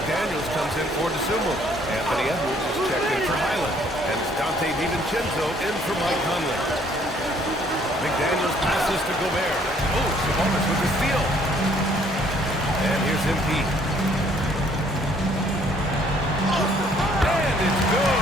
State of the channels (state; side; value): normal; both; correlation 0.62